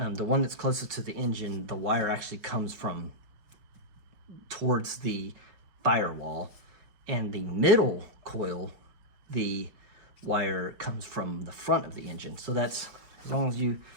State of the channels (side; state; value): left; late; 5.3 ms